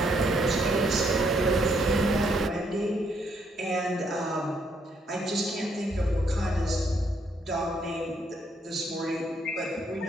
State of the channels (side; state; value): both; normal; correlation 0.72